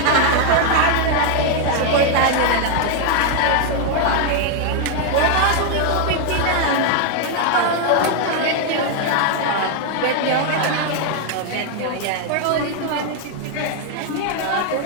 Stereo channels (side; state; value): both; different; correlation 0.00